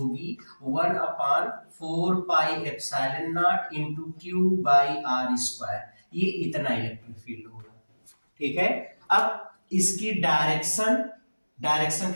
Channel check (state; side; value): inverted; both; correlation -1.00